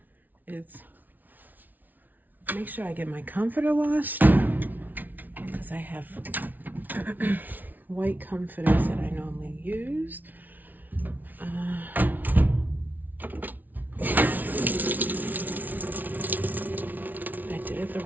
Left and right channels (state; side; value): late; left; 0.082 ms